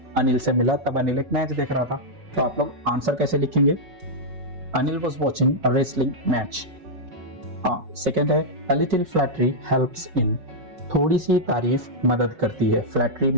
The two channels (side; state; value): left; late; 5.4 ms